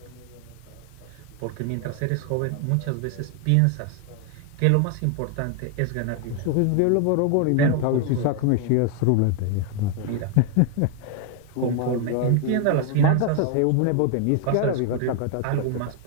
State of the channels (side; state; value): both; different; correlation 0.00